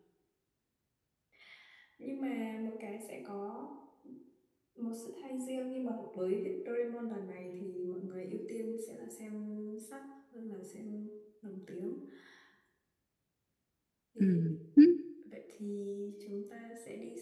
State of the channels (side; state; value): both; identical; correlation 1.00